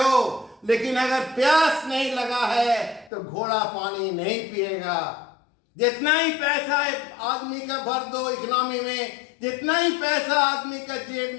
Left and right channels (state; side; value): drops out; right; at 3.1 s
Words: लेकिन अगर प्यास नहीं लगा है तो घोड़ा पानी नहीं पिएगा। जितना ही पैसा आदमी का भर दो इकोनॉमी में, जितना ही पैसा आदमी का जेब